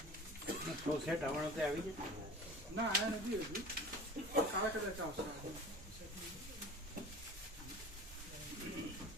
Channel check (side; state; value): both; normal; correlation 0.39